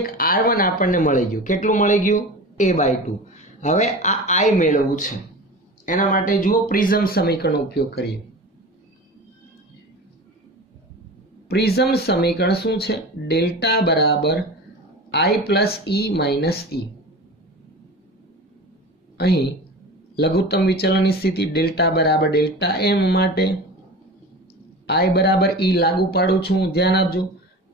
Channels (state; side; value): normal; both; correlation 0.33